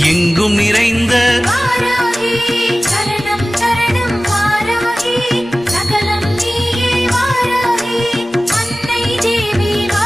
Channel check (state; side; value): normal; both; correlation 0.97